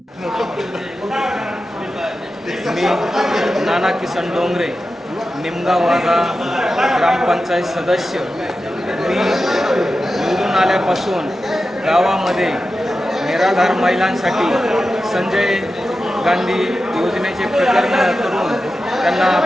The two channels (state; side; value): normal; both; correlation 0.92